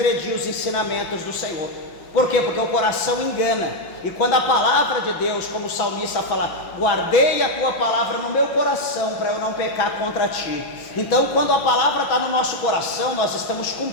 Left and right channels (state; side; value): late; right; 6.1 ms